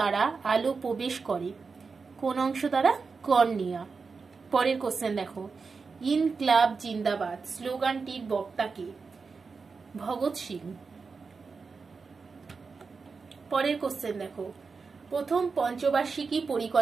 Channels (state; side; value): quieter; left; 4.8 dB